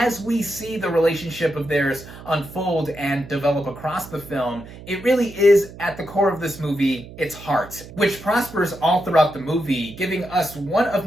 we see the relationship of theirs unfold and develop across the film, it really is, at the core of this movie, its heart, which prospers all throughout the movie, giving us one of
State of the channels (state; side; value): noise; right; hum, 16 dB below the sound